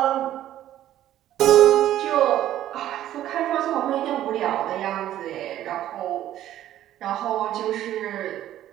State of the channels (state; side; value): quieter; left; 12.6 dB